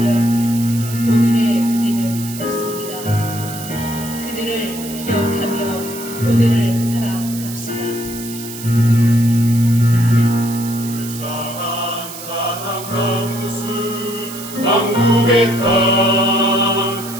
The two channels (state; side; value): noise; right; hiss, 12 dB below the sound